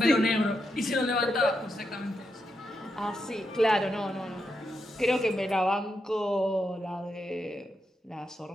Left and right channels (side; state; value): both; normal; correlation 0.84